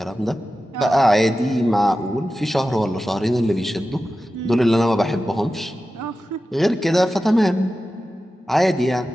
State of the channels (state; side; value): normal; both; correlation 0.93